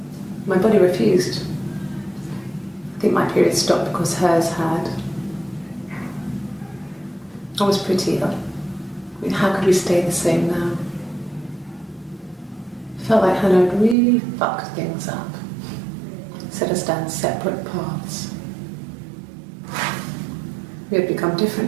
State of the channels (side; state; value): left; drops out; at 14.0 s